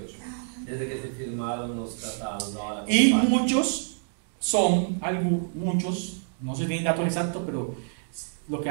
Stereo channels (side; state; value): left; silent; digital silence